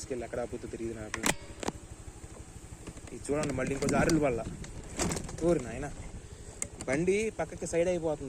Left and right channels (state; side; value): identical; both; correlation 1.00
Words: ఎక్కడ ఆపుతూ తిరిగి నాకు. ఇది చూడండి మళ్ళీ ఇంకో దారులు వల్ల ఊరి నాయన బండి పక్కకి సైడ్